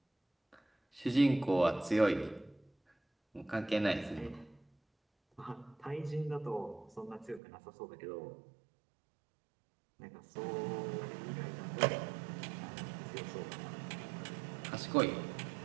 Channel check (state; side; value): drops out; left; at 7.4 s